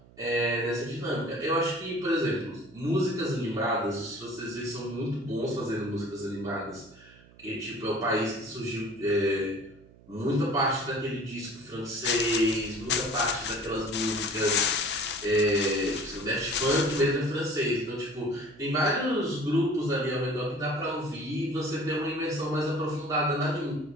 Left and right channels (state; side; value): noise; right; hum, 24 dB below the sound